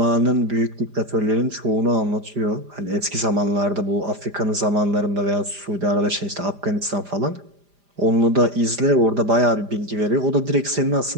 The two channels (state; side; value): late; left; 5.0 ms